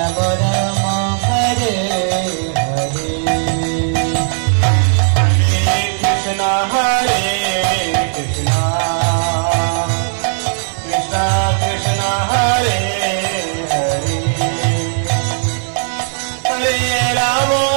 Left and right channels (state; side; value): silent; left; digital silence